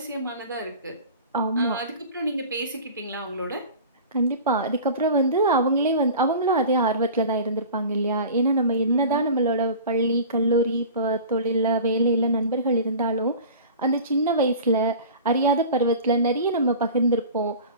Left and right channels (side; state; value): both; inverted; correlation -0.38